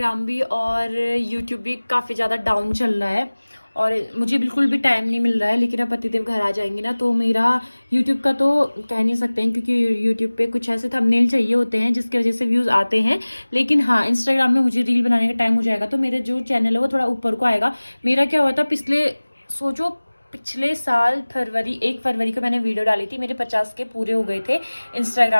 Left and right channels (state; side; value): inverted; both; correlation -1.00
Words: भी और यूट्यूब भी काफ़ी ज़्यादा डाउन चल रहा है, और मुझे बिल्कुल भी टाइम नहीं मिल रहा है। लेकिन अब पतिदेव घर आ जाएंगे ना, तो मेरा यूट्यूब का तो कह नहीं सकते हैं, क्योंकि यूट्यूब पे कुछ ऐसे थंबनेल चाहिए होते हैं जिसकी वजह से व्यूज़ आते हैं। लेकिन हाँ, इंस्टाग्राम में मुझे रील बनाने का टाइम हो जाएगा तो मेरा जो चैनल है वो थोड़ा ऊपर को आएगा। मेरा क्या हुआ था पिछले साल 1 फरवरी को मैंने वीडियो डाली थी, मेरे 50 के पूरे हो गए थे